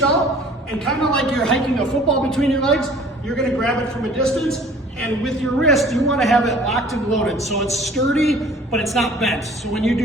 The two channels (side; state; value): both; normal; correlation 0.50